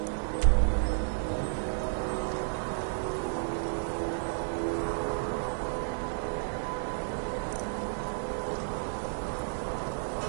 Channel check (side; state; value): left; silent; 55 dB below the other